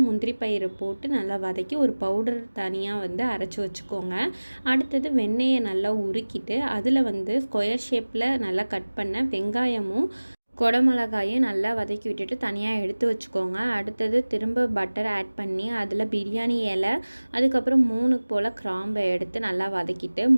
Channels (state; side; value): inverted; both; correlation -1.00